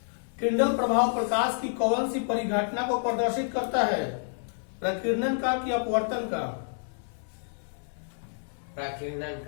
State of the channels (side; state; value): right; silent; 59 dB below the other